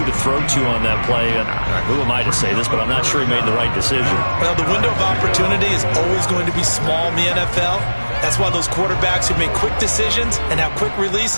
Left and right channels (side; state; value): both; inverted; correlation -1.00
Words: to throw to on that play. And who am I to say this, but I'm not sure he made the right decision. Well, the window of opportunity is always going to be small in the NFL. That's why those quarterbacks who make quick decisions and have quick